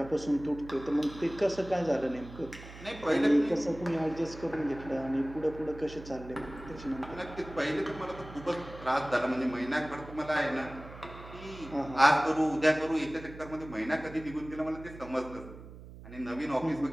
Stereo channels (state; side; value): noise; right; hum, 15 dB below the sound